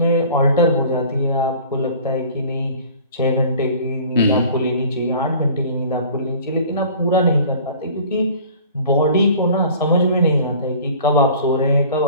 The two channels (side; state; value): both; inverted; correlation -0.46